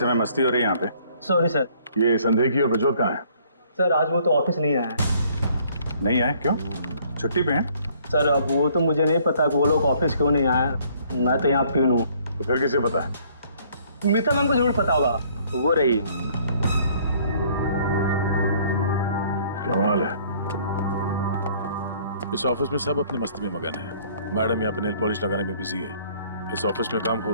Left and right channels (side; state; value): both; inverted; correlation -0.60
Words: मस्ती हो रही है यहाँ पे। Sorry sir. ये संदेही और प्रज्वल कहाँ है? सर आज वो तो ऑफिस नहीं आया है। नहीं आए? क्यों? छुट्टी पे हैं? सर अब वो तो मुझे नहीं पता कि वो लोग ऑफिस क्यों नहीं आए। मैं तो यहाँ प्यून हूँ। तो फिर किसे पता है? मीता मैम को जरूर पता होगा, वो रही। कमाल है, इस ऑफिस में सब अपनी मस्ती में मगन है। मैडम यहाँ पे नेल पॉलिश लगाने में बिजी है। इस ऑफिस में काम